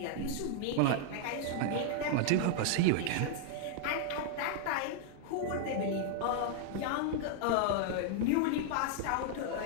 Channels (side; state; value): both; different; correlation 0.00